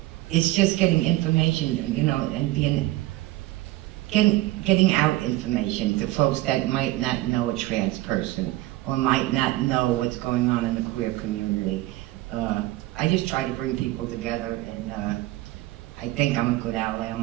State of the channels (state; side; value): quieter; left; 17.6 dB